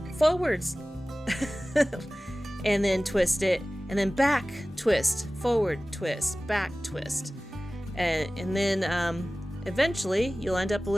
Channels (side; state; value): both; normal; correlation 0.97